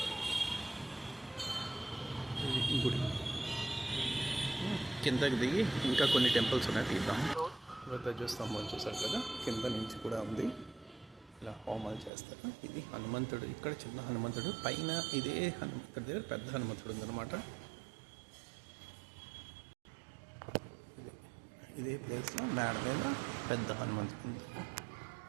గుడి కిందకి దిగి ఇంకా కొన్ని టెంపుల్స్ ఉన్నాయి, తీద్దాం. ధ్వజస్తంభం చూసారు కదా, కింద నుంచి కూడా ఉంది. ఇలా హోమాలు చేస్తారు. ఇది హనుమంతుడు. ఇక్కడ చిన్న హనుమంతుడు, పైన ఇదే హనుమంతుడి దగ్గర పెద్ద హనుమంతుడు ఉందన్నమాట. ఇదే ప్లేస్లో మేడ మీద పెద్ద హనుమంతుడు ఉంది.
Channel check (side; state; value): left; drops out; at 12.1 s